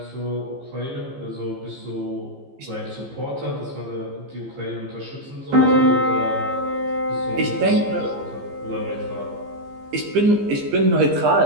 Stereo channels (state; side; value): late; left; 15 ms